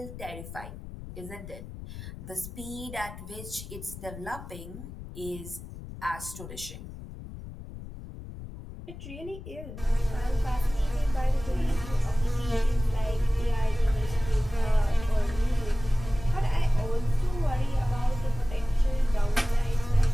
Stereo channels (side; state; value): left; noise; rumble, 12 dB below the sound